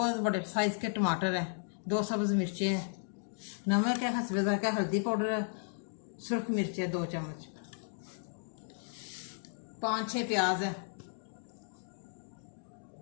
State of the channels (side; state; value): right; silent; 55 dB below the other